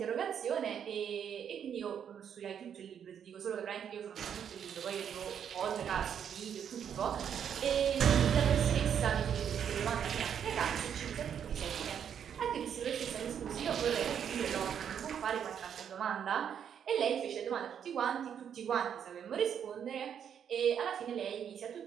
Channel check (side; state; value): left; quieter; 8.4 dB